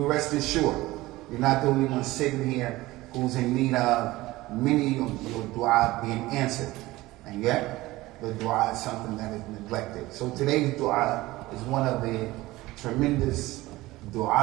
rest assured, you're not the only one sitting here who's in need of many of your dua being answered. And yet, the dua is something that is neglected. So today's dua is one of the tremendous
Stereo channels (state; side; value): quieter; left; 18.7 dB